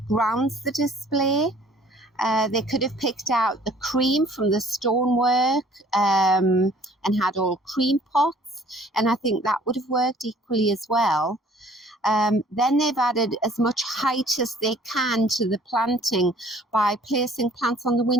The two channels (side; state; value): both; normal; correlation 0.55